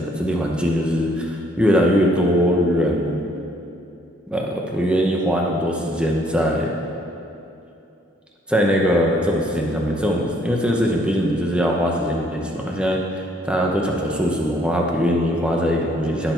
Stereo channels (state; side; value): normal; both; correlation 0.65